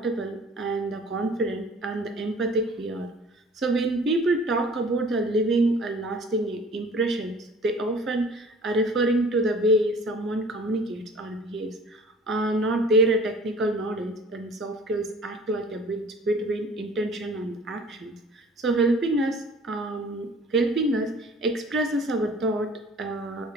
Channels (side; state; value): both; normal; correlation 0.48